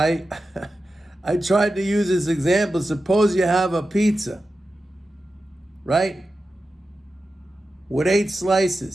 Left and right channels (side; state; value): both; normal; correlation 0.92